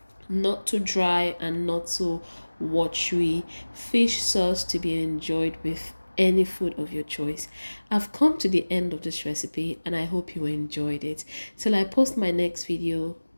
not too dry and not too watery fish sauce to be enjoyed with any food of your choice. I've come to the end of this recipe and I hope you enjoyed it. Till I post my next video,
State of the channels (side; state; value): both; inverted; correlation -1.00